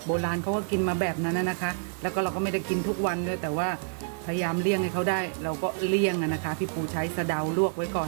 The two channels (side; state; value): left; silent; digital silence